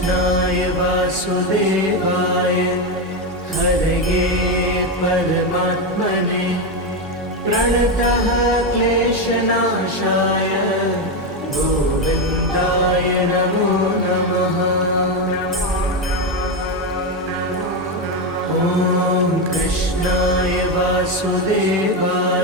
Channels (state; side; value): normal; both; correlation 0.10